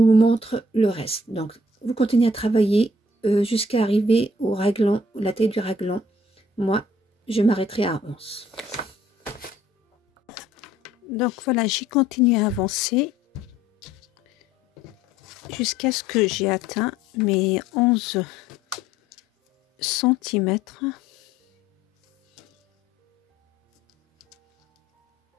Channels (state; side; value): normal; both; correlation 0.60